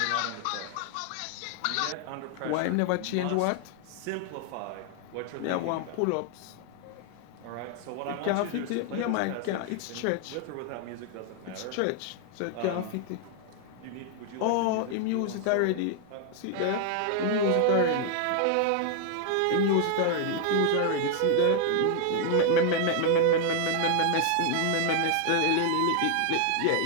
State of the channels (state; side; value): different; both; correlation 0.00